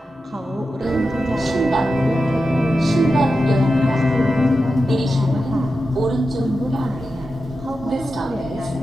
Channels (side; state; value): both; normal; correlation 0.90